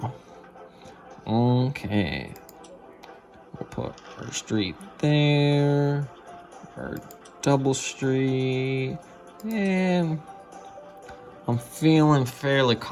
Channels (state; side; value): identical; both; correlation 1.00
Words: Okay. We'll put our street there, our double street, and I'm feeling fairly